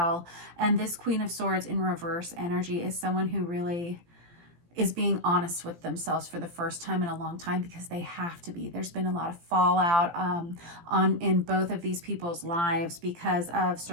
And this Queen of Swords in reverse energy is someone who really is being honest with themselves for the first time in a long time, because they have to be. There's been a lot of fallout in both of these people's lives because of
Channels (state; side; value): late; left; 17 ms